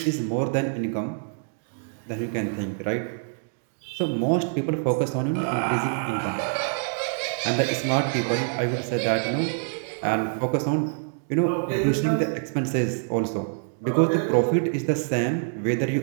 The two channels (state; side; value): silent; left; digital silence